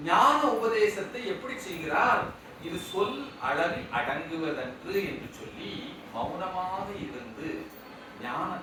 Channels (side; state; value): both; identical; correlation 1.00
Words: ஞான உபதேசத்தை எப்படி செய்கிறார், இது சொல் அளவில் அடங்குவதன்று என்று சொல்லி மௌனமாக இருந்து